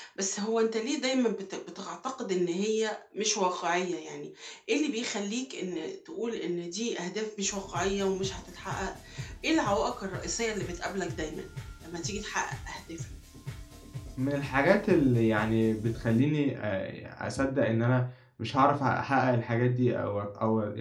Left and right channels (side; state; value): both; identical; correlation 1.00